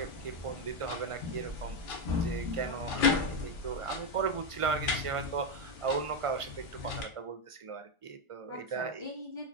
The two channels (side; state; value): left; late; 1.5 ms